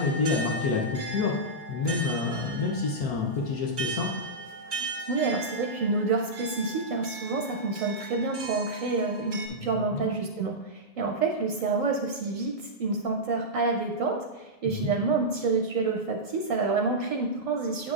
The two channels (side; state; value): right; late; 1.7 ms